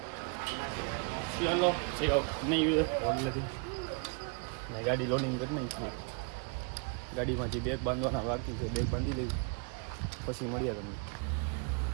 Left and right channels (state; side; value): quieter; left; 35.2 dB